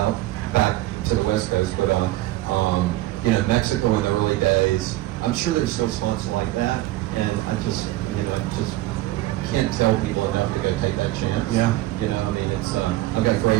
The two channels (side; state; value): left; quieter; 16.6 dB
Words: back to the West Coast, but, Mexico in the early days. I'm sure there's still spots like that, and I just can't tell people enough to go take that chance. Yeah. I've got